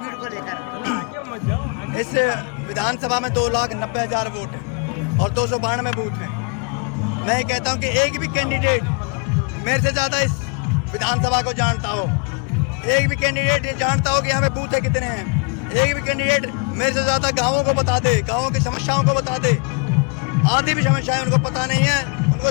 को लेकर? इस विधानसभा में 2,90,000 वोट है और 292 बूथ है। मैं कहता हूं कि एक भी कैंडिडेट मेरे से ज़्यादा इस विधानसभा को जानता हो, एक भी कैंडिडेट ये जानता हो कि यहाँ पे बूथ कितने हैं, एक भी कैंडिडेट मेरे से ज़्यादा गाँवों को बता दे, गाँवों की समस्याओं को बता दे। आधी भी समस्याएं उनको पता नहीं है, उनको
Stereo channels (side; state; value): right; quieter; 34.0 dB